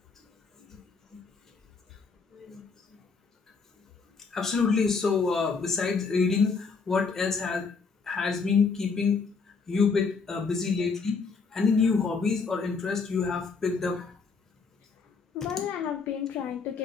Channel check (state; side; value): quieter; right; 4.9 dB